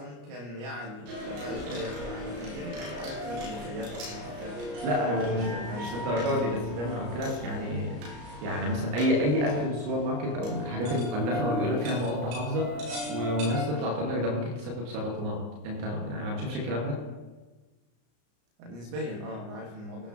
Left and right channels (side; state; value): left; late; 34 ms